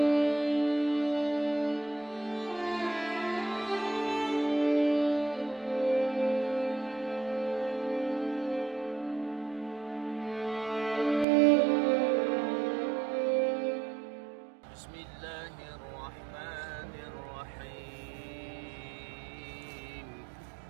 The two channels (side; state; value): left; drops out; at 11.2 s